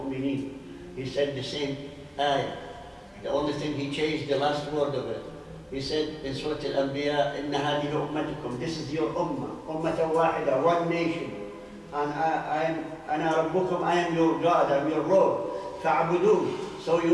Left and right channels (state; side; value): identical; both; correlation 1.00